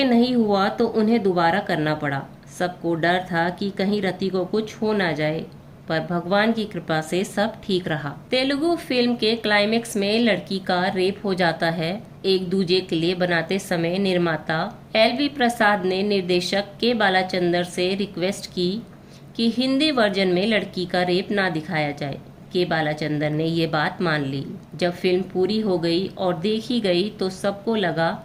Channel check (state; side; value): identical; both; correlation 1.00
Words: नहीं हुआ तो उन्हें दोबारा करना पड़ा। सबको डर था कि कहीं रति को कुछ हो ना जाए, पर भगवान की कृपा से सब ठीक रहा। तेलुगु फिल्म के क्लाइमेक्स में लड़की का रेप हो जाता है। एक दूजे के लिए बनाते समय निर्माता LV प्रसाद ने निर्देशक के बालाचंदर से रिक्वेस्ट की कि हिंदी वर्जन में लड़की का रेप ना दिखाया जाए। के बालाचंदर ने ये बात मान ली। जब फिल्म पूरी हो गई और देखी गई तो सबको लगा